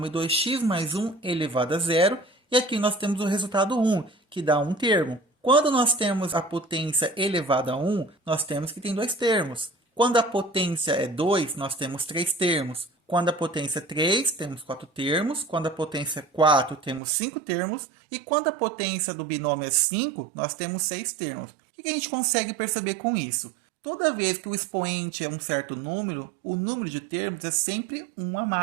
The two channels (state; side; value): drops out; left; at 17.0 s